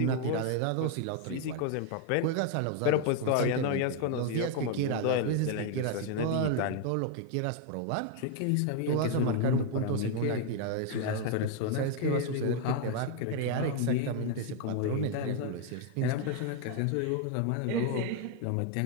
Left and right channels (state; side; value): different; both; correlation 0.00